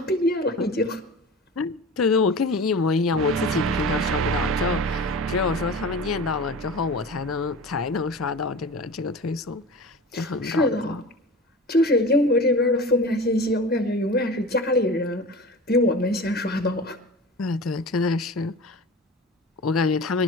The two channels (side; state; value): both; normal; correlation 0.34